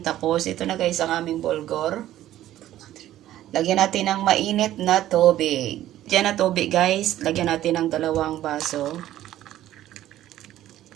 Tapos ito na guys ang aming bulgur. Lagyan natin ng mainit na tubig. Diyan na tubig guys, lagyan natin ng 2 baso.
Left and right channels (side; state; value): left; quieter; 13.4 dB